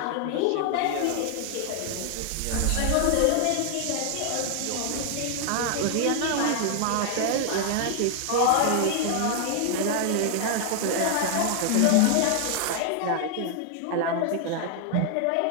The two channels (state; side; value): different; both; correlation 0.00